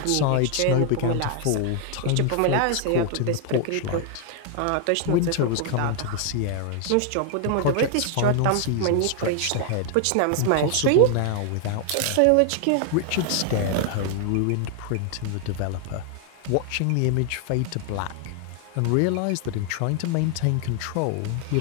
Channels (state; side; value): different; both; correlation 0.00